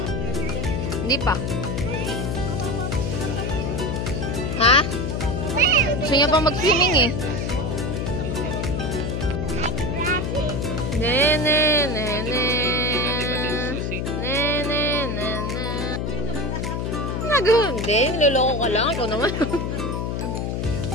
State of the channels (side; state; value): left; noise; hum, 1 dB below the sound